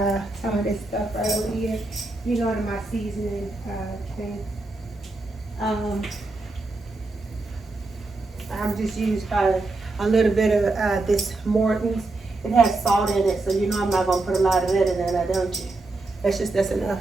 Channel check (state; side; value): quieter; left; 3.2 dB